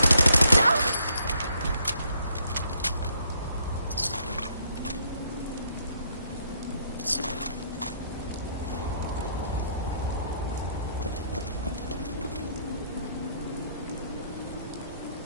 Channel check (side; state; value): both; inverted; correlation -0.70